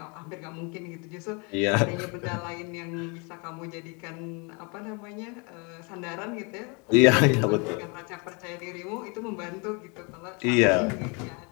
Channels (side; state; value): right; quieter; 32.0 dB